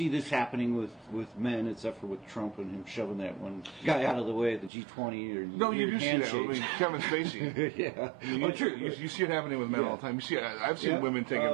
this happening with men, except for with Trump and him shoving that one guy out of the way at the G20 or no, you do see that. I mean, Kevin Spacey. Yeah, true. You see it happening with men all the time. You see, I've seen women take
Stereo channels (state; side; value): drops out; left; at 4.7 s